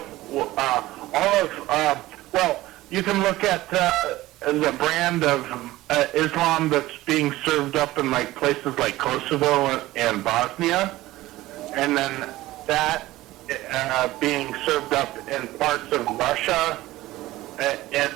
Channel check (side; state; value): left; quieter; 17.2 dB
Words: you can look at the brand of Islam that's being served up in like places like Kosovo and Bosnia, and then that being served up in parts of Russia,